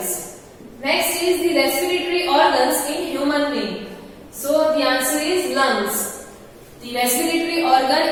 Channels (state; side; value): identical; both; correlation 1.00